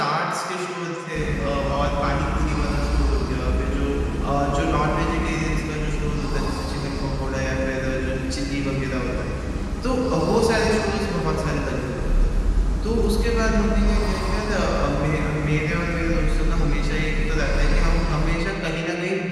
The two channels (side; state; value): both; identical; correlation 1.00